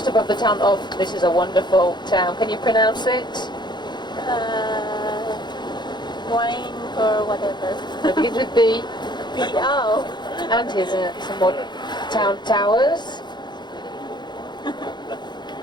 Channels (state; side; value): late; right; 0.21 ms